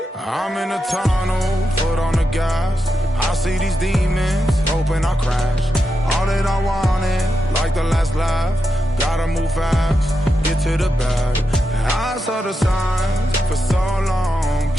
I'm in a tunnel, foot on the gas. I see these demons, hoping I crash. All that I wanted, like the last laugh. Gotta move fast, get to the bag. I saw the signs for so long,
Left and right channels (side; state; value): both; normal; correlation 0.87